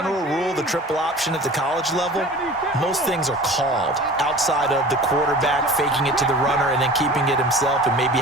rule, the triple option at the college level, most things are called outside of the quarterback faking it to the runner and then keeping it himself and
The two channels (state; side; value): normal; both; correlation 0.41